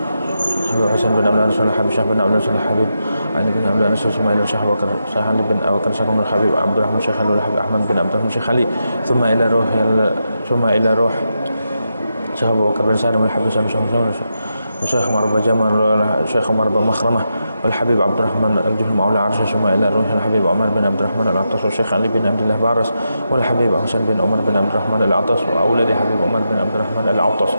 حبيب حسين بن عبد رسول الحبيب شيخ بن عبد رسول الحبيب علي بن عبد رسول ثم إلى الشيخ أبو بكر شيخ علي بن أبو بكر شيخ الحبيب عبد الرحمن شيخ الحبيب أحمد بن عبد الرحمن شيخ علي ثم إلى روح شيخ أبو بكر بن سالم الحبيب الشيخ عمر بن جمال الشيخ عمر بن مخرمة والحبيب عبد الرحمن الجهل مولى عرش ثم إلى روح الحبيب عمر بن عبد الرحمن العطاس والشيخ علي بن عبد الله بارس والحبيب حسين بن عمر بن عبد الرحمن العطاس وأولاد حبيب عمر بن عبد الرحمن العطاس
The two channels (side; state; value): both; inverted; correlation -0.86